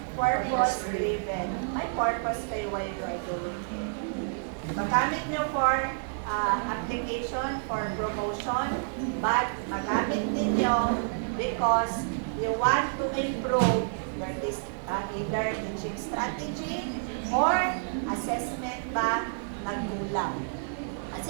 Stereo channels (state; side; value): silent; left; digital silence